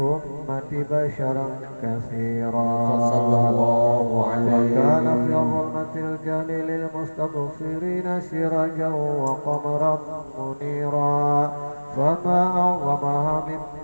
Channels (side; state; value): both; inverted; correlation -1.00